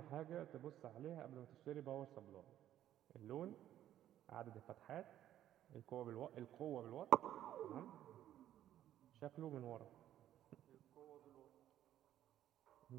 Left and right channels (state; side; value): quieter; left; 12.0 dB